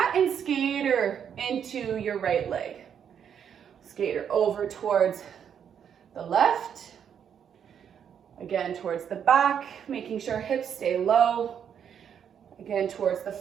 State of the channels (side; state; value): left; quieter; 8.2 dB